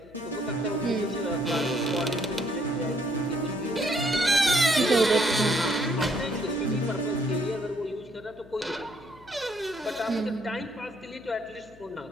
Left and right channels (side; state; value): left; noise; hum, 24 dB below the sound